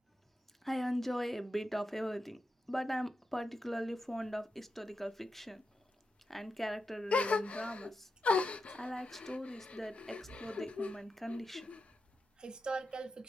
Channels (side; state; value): both; normal; correlation 0.89